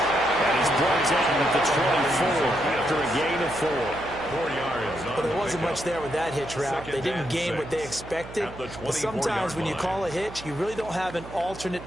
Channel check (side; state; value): right; noise; hum, 15 dB below the sound